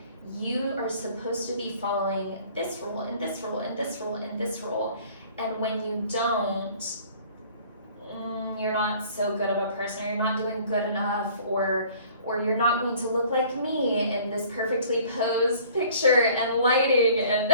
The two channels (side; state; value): both; inverted; correlation -0.50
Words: you are supposed to be following this rule and this rule and this rule and this rule, and when you don't, you're not so good of a person, or you're not doing good enough, or you're not going to look like me in this perfectly posed picture and lighting and